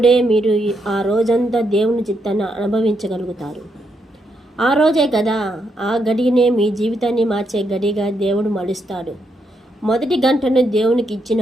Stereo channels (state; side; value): normal; both; correlation 0.79